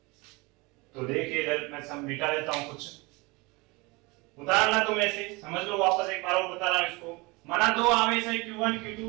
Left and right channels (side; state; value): left; quieter; 25.3 dB